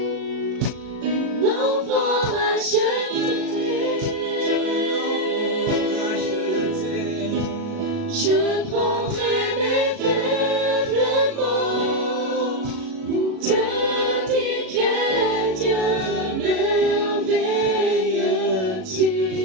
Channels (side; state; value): left; late; 37 ms